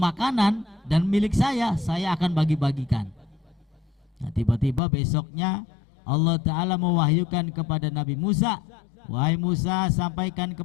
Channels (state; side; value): drops out; right; at 4.8 s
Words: dan milik saya akan bagi-bagikan. Nah, tiba-tiba besoknya Allah Ta'ala mewahyukan kepada Nabi Musa, wahai Musa, sampaikan